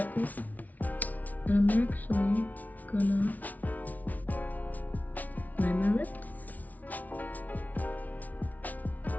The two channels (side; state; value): right; late; 0.075 ms